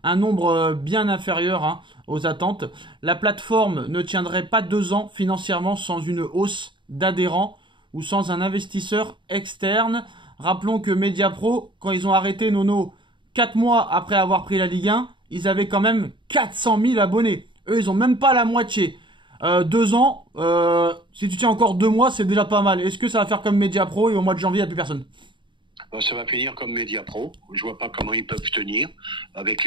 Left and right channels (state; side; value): late; left; 0.23 ms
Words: Un nombre bien inférieur aux attentes. La plateforme ne tiendrait pas 2 ans financièrement sans une hausse d'adhérents ou sans un investisseur externe. Rappelons que Mediapro, quand ils ont arrêté Nono 4 mois après avoir pris la Ligue 1, ils avaient quand même 400 000 abonnés. Eux, ils ont même pas la moitié. 2 ans, si tu tiens encore 2 mois, c'est déjà pas mal. Est-ce que ça va faire comme Mediapro et au mois de janvier, il n'y a plus personne? Ça va finir comme Mediapro. Je vois pas comment ils peuvent tenir avec